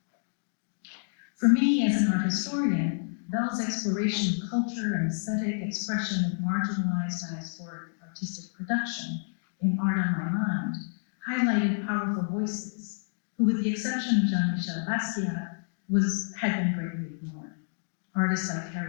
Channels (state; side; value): silent; right; digital silence